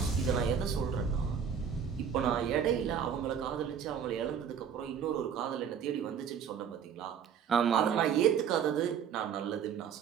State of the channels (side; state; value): left; quieter; 7.7 dB